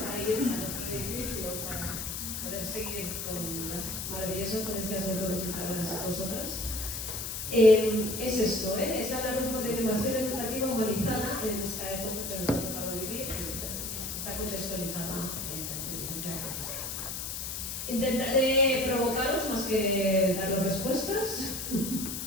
para ir a nuestro edificio para poder seguir con las maravillosas ponencias de todos y todas vosotras. Es esto, es hablar un poco de innovación educativa humanizada en esta época que nos ha tocado vivir, está contextualizada en la inteligencia artificial. Intentaré provocaros más que daros respuestas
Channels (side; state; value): left; noise; hiss, 5 dB below the sound